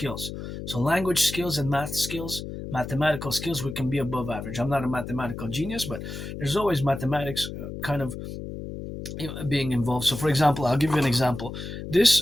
So language skills and math skills, mathematical skills, we can be above average. I'm not a mathematical genius, but there's always mathematics kind of being involved. So, for example, I'll give you an example.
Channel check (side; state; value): left; noise; hum, 8 dB below the sound